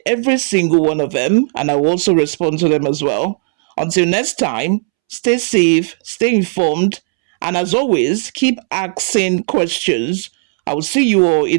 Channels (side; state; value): left; silent; 70 dB below the other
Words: every single one of them and I will also respond to them as well. Until next time, stay safe, stay informed, and as always, keep asking questions. I will see you all